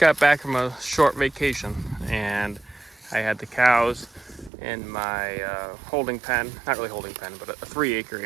back from a short vacation, and I had the cows in my holding pen, not really holding pen, but a 3-acre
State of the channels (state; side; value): drops out; left; at 4.5 s